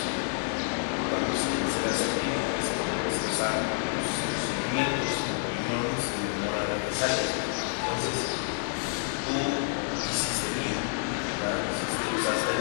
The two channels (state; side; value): silent; right; 59 dB below the other